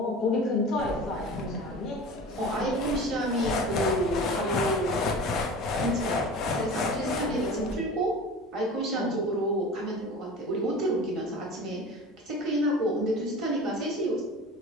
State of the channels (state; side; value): normal; both; correlation 0.37